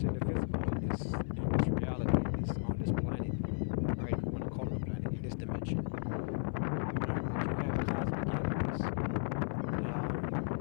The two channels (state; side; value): silent; right; 55 dB below the other